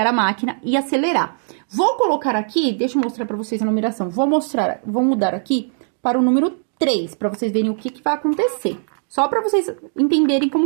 a máquina e acelerar. Vou colocar aqui, deixa eu mostrar pra vocês a numeração. Vou mudar aqui para o número 3, pra vocês verem o que vai acontecer. Só pra vocês entenderem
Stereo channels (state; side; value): silent; left; digital silence